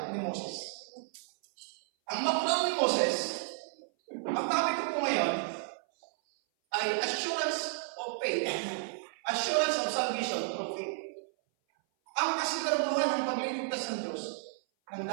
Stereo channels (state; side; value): silent; left; 56 dB below the other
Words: ni Moses. Ang background ni Moses, ang topic ko po ngayon, ay assurance of faith. Assurance of salvation through faith. Ang kasiguraduhan ng pagliligtas ng Diyos nang